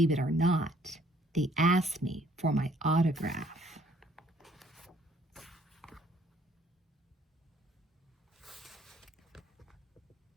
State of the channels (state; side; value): normal; both; correlation 0.62